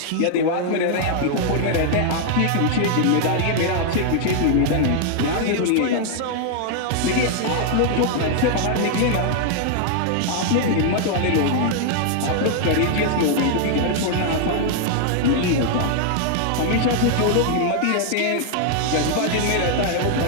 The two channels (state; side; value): different; both; correlation 0.00